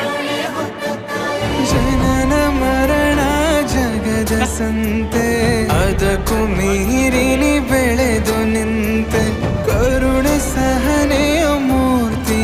ಹೊತ್ತ ತಾಯಿ ಜನನ ಮರಣ ಜಗದ ಸಂತೆ ಅದಕ್ಕೂ ಮೀರಿನಿ ಬೆಳೆದು ನಿಂತೆ ಕರುಣೆ ಸಹನೆಯ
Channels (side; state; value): both; identical; correlation 1.00